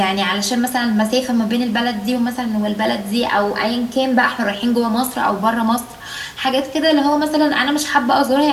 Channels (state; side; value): identical; both; correlation 1.00